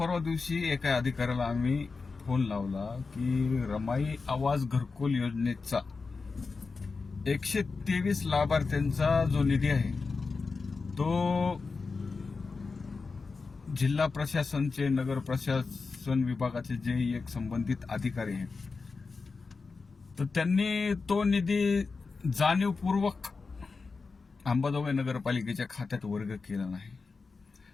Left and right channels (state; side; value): quieter; right; 4.4 dB